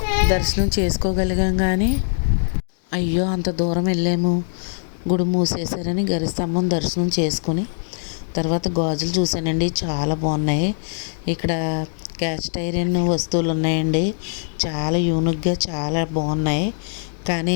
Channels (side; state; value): right; silent; 64 dB below the other